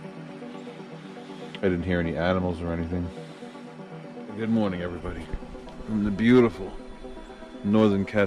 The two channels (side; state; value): both; identical; correlation 1.00